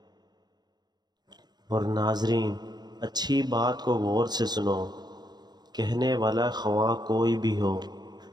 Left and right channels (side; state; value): left; late; 0.20 ms